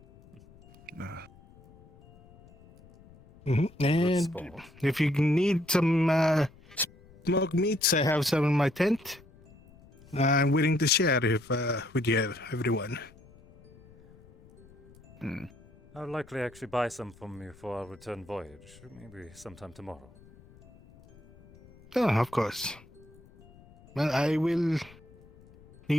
And if you need some smoked meats, I have some in my tent. I'm willing to share if with you, everyone. I'll likely actually buy some from you for our return voyage, maybe sometime tomorrow. Oh, of course. Well, I will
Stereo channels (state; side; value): noise; left; rumble, 25 dB below the sound